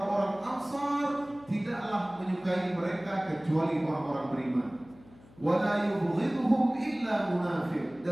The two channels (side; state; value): left; noise; hum, 24 dB below the sound